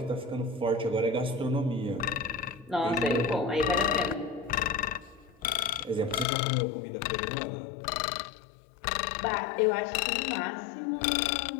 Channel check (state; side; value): drops out; right; at 6.2 s